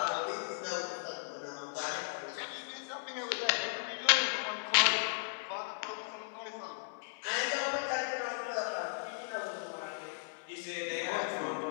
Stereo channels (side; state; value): right; silent; digital silence